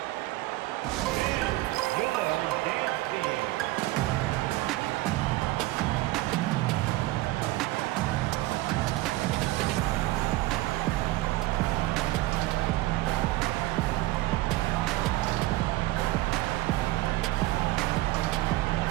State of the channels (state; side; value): quieter; left; 18.7 dB